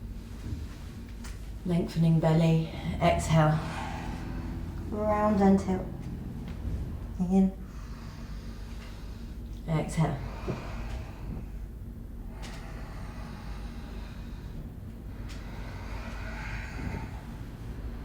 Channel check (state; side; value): identical; both; correlation 1.00